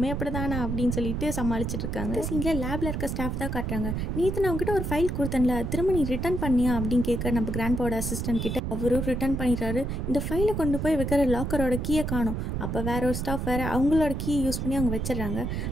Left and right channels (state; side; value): noise; right; rumble, 2 dB below the sound